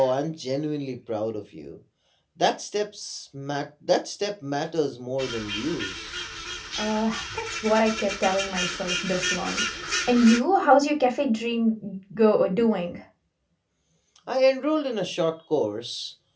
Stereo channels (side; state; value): both; identical; correlation 1.00